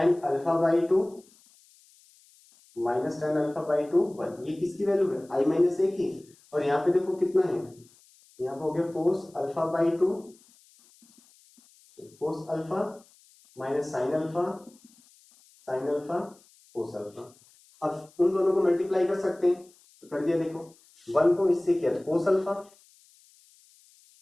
alpha by to minus 10 alpha by to 1, ये किसकी वैल्यू है i माइनस ए की। और यहाँ पे देखो कितना है, यहाँ पे हो गया कोस alpha by to cos alpha minus sine alpha cos alpha. अब उन दोनों को मल्टीप्लाई कर सकते हैं तो कर दिया। देखो 1 को इससे किया तो कोस अल्फा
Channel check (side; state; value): left; noise; hiss, 29 dB below the sound